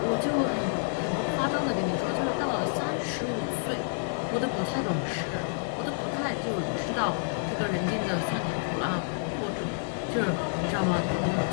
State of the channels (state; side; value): silent; right; digital silence